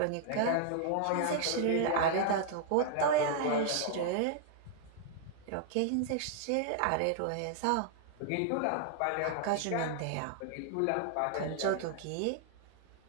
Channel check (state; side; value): different; both; correlation -0.01